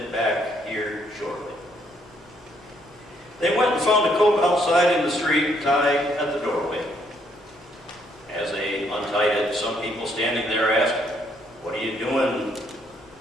back here shortly.'" They went and found a colt outside in the street, tied at the doorway. As they untied it, some people standing there asked, "What are you doing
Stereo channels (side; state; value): both; normal; correlation 0.70